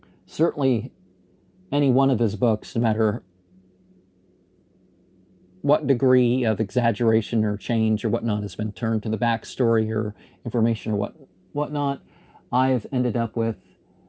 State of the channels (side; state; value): both; identical; correlation 1.00